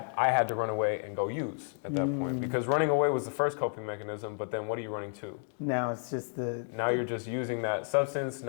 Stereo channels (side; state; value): right; silent; 57 dB below the other